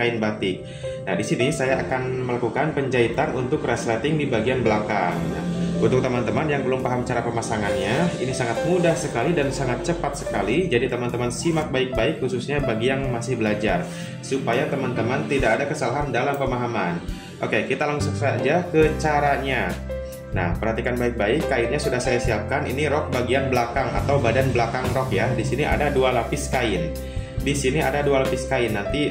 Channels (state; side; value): identical; both; correlation 1.00